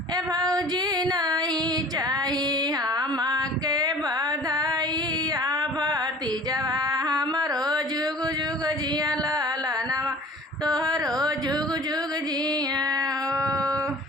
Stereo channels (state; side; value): normal; both; correlation 0.46